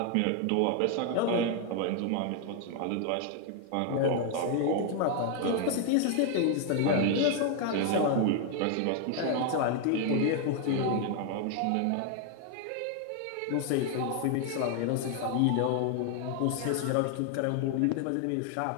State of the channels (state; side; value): different; both; correlation 0.01